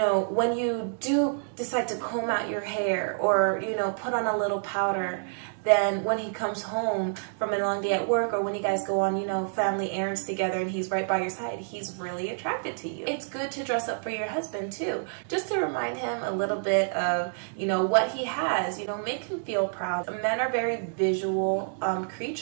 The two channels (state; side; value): silent; left; digital silence